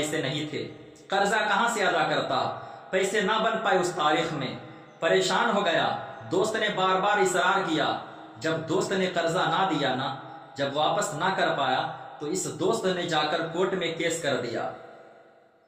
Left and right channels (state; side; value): identical; both; correlation 1.00